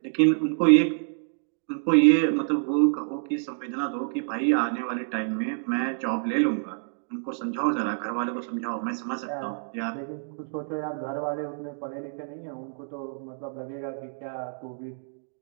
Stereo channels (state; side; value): silent; left; digital silence